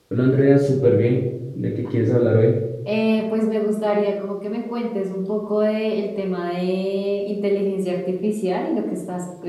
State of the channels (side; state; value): both; identical; correlation 1.00